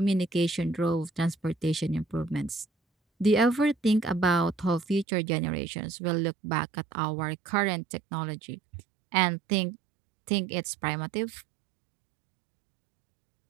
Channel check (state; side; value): drops out; left; at 5.1 s